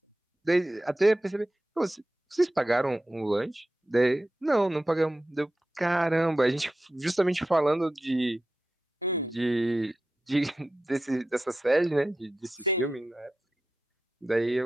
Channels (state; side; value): normal; both; correlation 0.91